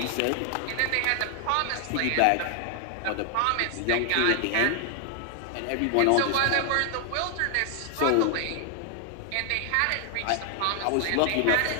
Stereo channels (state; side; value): different; both; correlation 0.00